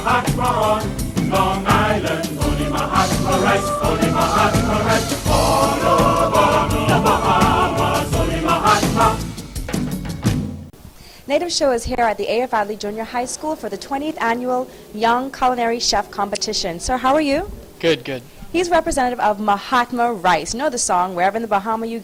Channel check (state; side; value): identical; both; correlation 1.00